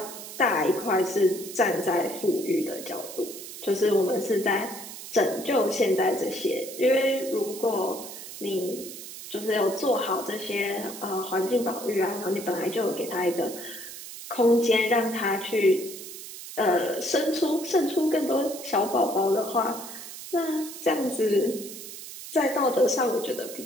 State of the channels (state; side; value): noise; right; hiss, 12 dB below the sound